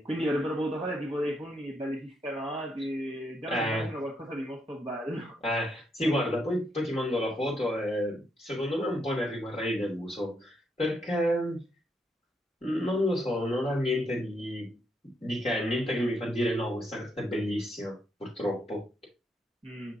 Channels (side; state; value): both; normal; correlation 0.77